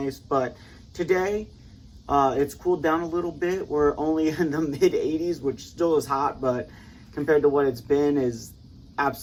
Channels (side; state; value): both; identical; correlation 1.00